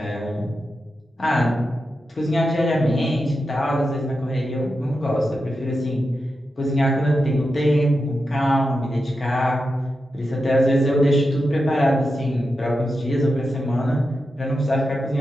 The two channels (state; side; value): normal; both; correlation 0.89